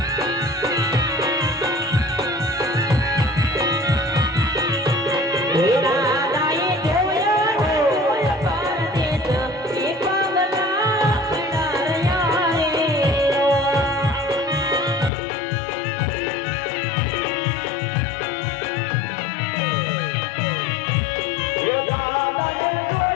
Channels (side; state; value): right; drops out; at 15.1 s